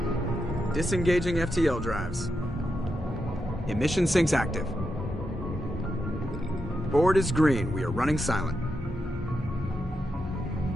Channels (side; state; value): both; normal; correlation 0.86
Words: Disengaging FTL drives. Emission sinks active. Board is green. We are running silent.